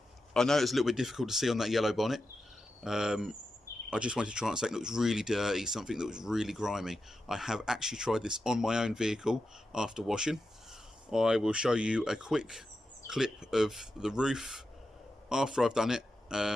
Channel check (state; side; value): normal; both; correlation 0.90